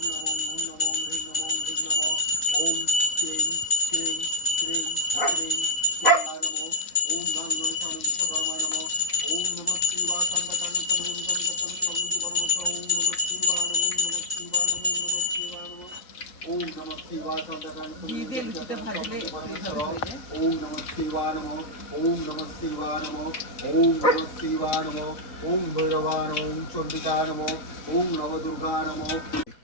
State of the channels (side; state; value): right; late; 4.0 ms